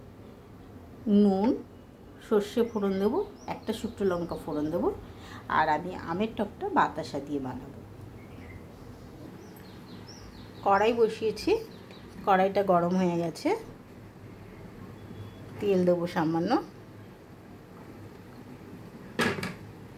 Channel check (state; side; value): identical; both; correlation 1.00